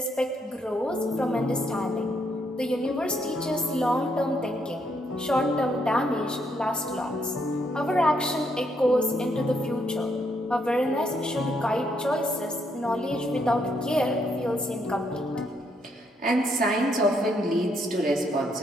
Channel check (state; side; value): normal; both; correlation 0.74